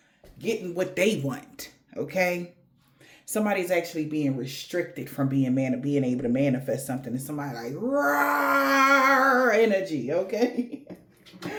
what they want. Okay? Somebody's actually being restricted from being able to manifest something. And somebody like raw energy, okay?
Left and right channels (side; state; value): both; identical; correlation 1.00